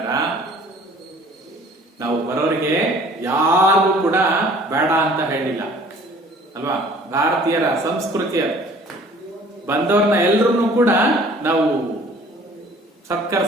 ನಾವು ಬರೋರಿಗೆ ಯಾರಿಗೂ ಕೂಡ ಬೇಡ ಅಂತ ಹೇಳಿಲ್ಲ ಅಲ್ವಾ. ಭಾರತೀಯರ ಸಂಸ್ಕೃತಿಯ ಬಂದವ್ರನ್ನ ಎಲ್ರನ್ನೂ ಕೂಡ ನಾವು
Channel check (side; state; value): both; normal; correlation 0.52